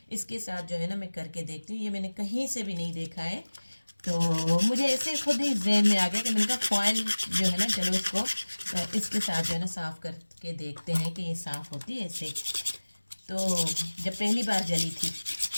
इसके साथ जो है ना मैं करके देखती हूँ। ये मैंने कहीं से भी नहीं देखा है, तो मुझे ऐसे खुद ही जहन में आ गया कि मैंने कहा फॉइल जो है ना, चलो इसको इसके साथ जो है ना साफ़ करके देखते हैं कि ये साफ़ होती है इससे। तो जब पहली बार जली थी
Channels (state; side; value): inverted; both; correlation -1.00